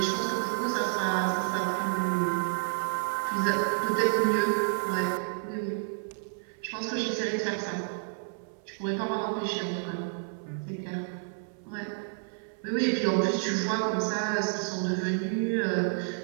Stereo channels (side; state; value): left; silent; 58 dB below the other